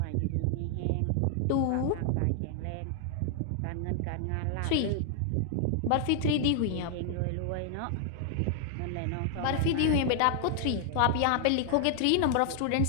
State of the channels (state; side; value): different; both; correlation 0.00